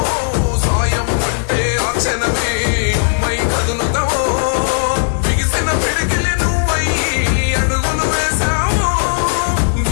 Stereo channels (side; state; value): right; silent; digital silence